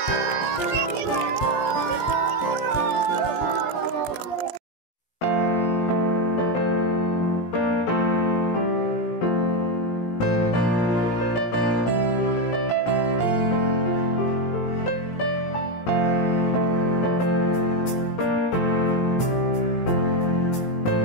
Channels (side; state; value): right; late; 17 ms